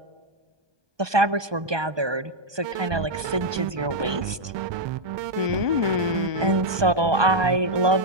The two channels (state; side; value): late; left; 1.2 ms